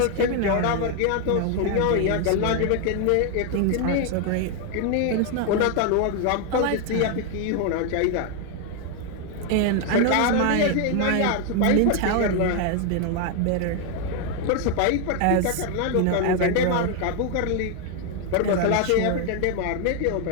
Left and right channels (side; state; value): both; different; correlation 0.01